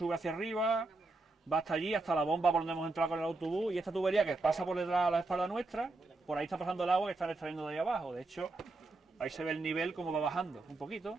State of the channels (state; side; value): quieter; left; 3.2 dB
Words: hacia arriba, va hasta allí, hasta la bomba por donde hemos entrado con el autobús, y esta tubería que pasa por detrás de la espalda nuestra, por ahí está pasando el agua que están extrayendo de ahí abajo. De hecho, ahí se ve el nivel como va bajando un poquito,